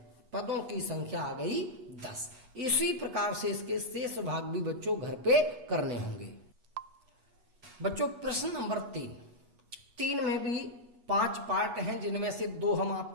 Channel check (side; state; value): left; late; 8.2 ms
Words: पदों की संख्या आ गई 10। इसी प्रकार से इसके शेष भाग भी बच्चों घर पे करने होंगे। बच्चों प्रश्न नंबर 3 में भी 5 पार्ट हैं, जिनमें से 2 हम